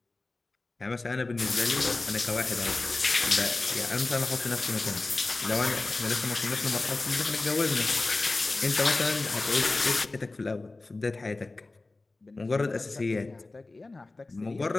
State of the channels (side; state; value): right; quieter; 3.2 dB